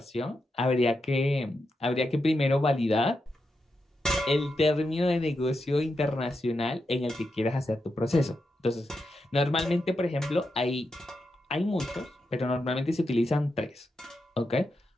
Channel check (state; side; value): normal; both; correlation 0.86